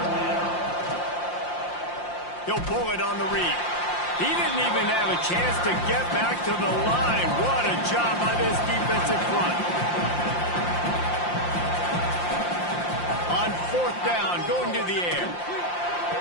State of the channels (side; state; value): right; late; 5.7 ms